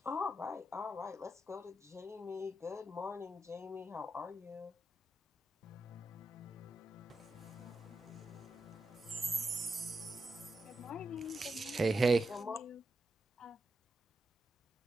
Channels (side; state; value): both; normal; correlation 0.87